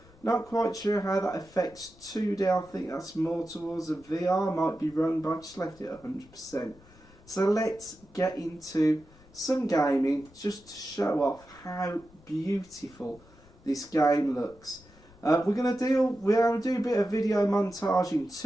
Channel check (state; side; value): noise; left; rumble, 25 dB below the sound